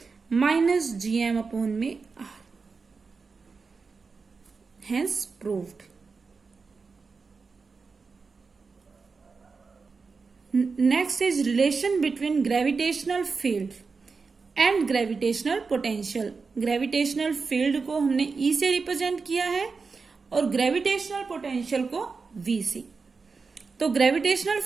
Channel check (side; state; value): left; quieter; 4.7 dB